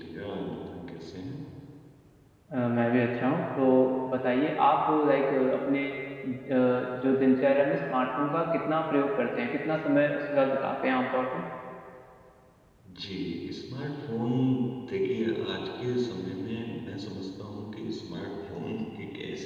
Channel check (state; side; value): identical; both; correlation 1.00